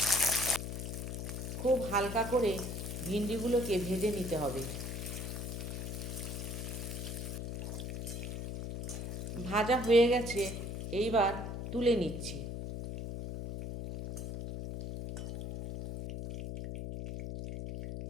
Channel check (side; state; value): left; noise; hum, 5 dB below the sound